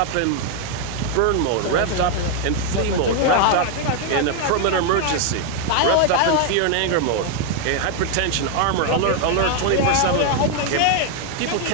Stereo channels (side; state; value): both; different; correlation 0.01